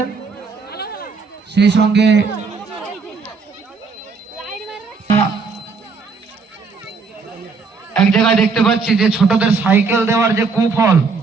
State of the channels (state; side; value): quieter; left; 4.7 dB